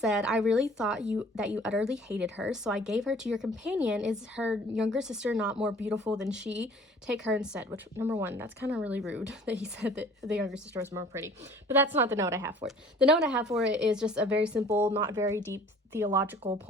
I really thought that you utterly hated her, so I gave her to your companion. Is her younger sister not more beautiful than she? Take her instead. Which, number one, that's kind of really rude that he said that the younger sister was more pretty. But that's not the note I have for it. The note I have for it is just a very simple, not very deep theological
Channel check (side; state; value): both; normal; correlation 0.51